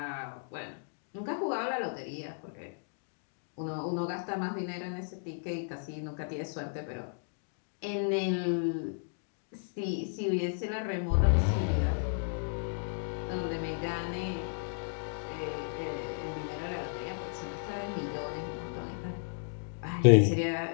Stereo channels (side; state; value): right; silent; digital silence